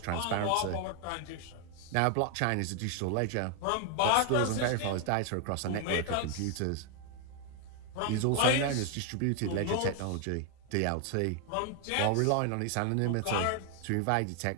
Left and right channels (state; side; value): different; both; correlation 0.00